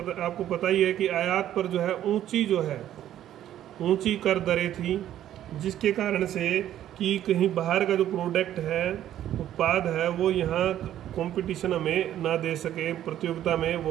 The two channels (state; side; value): quieter; left; 11.8 dB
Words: पता ही है कि आयात पर जो है ऊंची कर दरें थी, जिसके कारण से कि कहीं बाहर का जो प्रोडक्ट है, उत्पाद है, वो यहाँ कंपटीशन हमें ना दे सके, प्रतियोगिता में